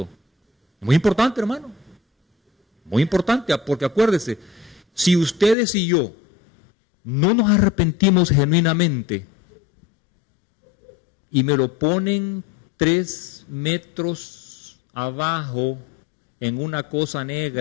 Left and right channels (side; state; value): right; drops out; at 5.6 s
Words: Muy importante, hermano. Muy importante, porque acuérdese, si ustedes y yo no nos arrepentimos genuinamente y me lo ponen 3 metros abajo en una cosa